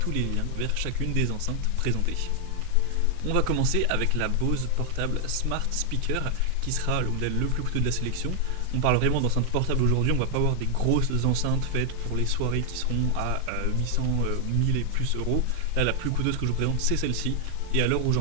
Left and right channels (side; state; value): both; different; correlation 0.00